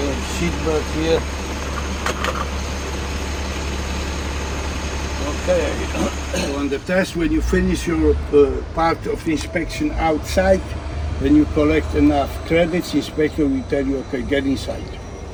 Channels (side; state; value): both; identical; correlation 1.00